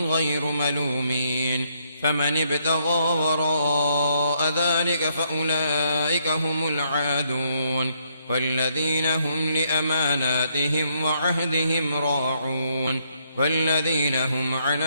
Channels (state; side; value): inverted; both; correlation -0.72